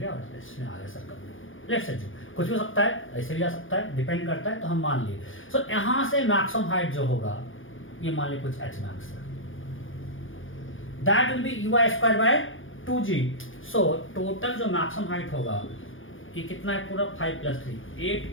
और इसमें आ गया सर्कल में, लेट से जो कुछ भी हो सकता है, ऐसे भी जा सकता है, डिपेंड करता है. तो हम मान लिए सो यहाँ से मैक्सिमम हाइट जो होगा ये मान लीजिए कुछ h मैक्स है, that will be U I square by 2g. So total जो मैक्सिमम हाइट होगा ये कितना है पूरा 5 plus 3 8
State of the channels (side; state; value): right; late; 0.58 ms